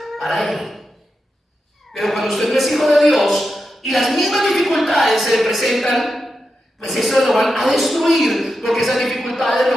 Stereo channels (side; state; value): both; normal; correlation 0.88